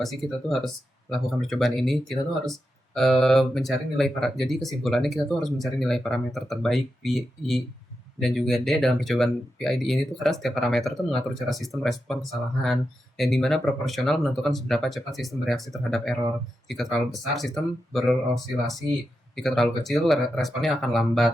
sih kita tuh harus lakukan percobaan ini? Kita tuh harus mencari nilai jadi kesimpulannya kita tuh harus mencari nilai parameter terbaik PI dan juga D dalam percobaan PID ini tuh karena setiap parameter tuh mengatur cara sistem respon kesalahan yang dimana proporsional menentukan seberapa cepat sistem bereaksi terhadap error. Jika terlalu besar sistem berosilasi, jika terlalu kecil responnya akan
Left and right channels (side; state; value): both; normal; correlation 0.88